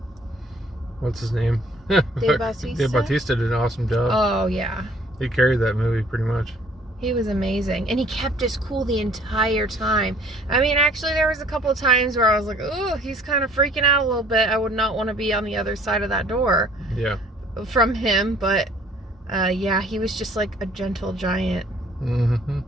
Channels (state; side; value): normal; both; correlation 0.57